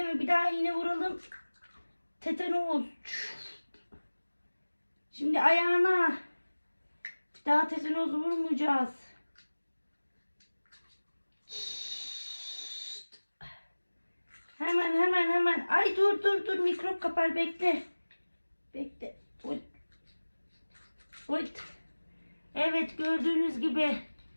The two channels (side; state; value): both; inverted; correlation -1.00